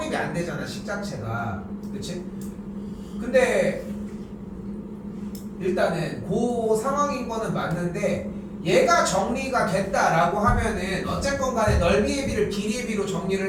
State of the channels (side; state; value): both; identical; correlation 1.00